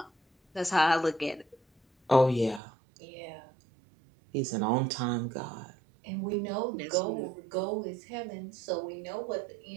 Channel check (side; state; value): left; drops out; at 2.6 s